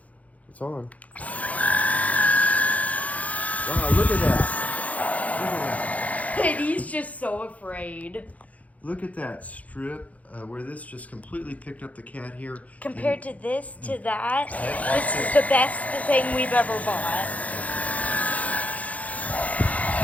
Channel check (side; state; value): right; late; 0.070 ms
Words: It's on. Wow, look at that. Look at that. And he's just so afraid. Look at that strip where this just completely picked up the cat hair. Compared to this, to that, this is the best thing we've ever bought.